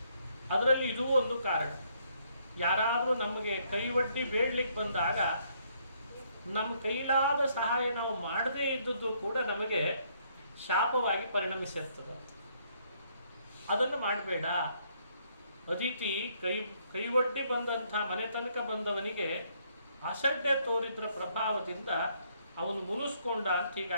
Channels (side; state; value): both; inverted; correlation -0.69